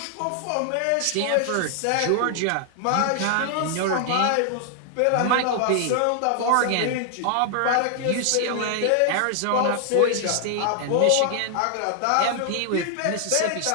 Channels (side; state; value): both; different; correlation 0.00